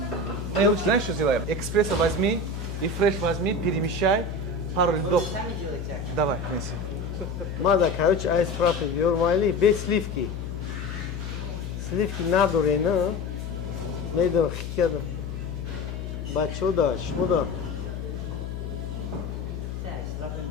знаешь что сделаем экспресса возьми и фреш возьми перемещай пару льдов давай неси мада короче айс фраппе биор майли без сливки надо не медо хикеда бачода шмода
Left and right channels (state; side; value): noise; left; hum, 6 dB below the sound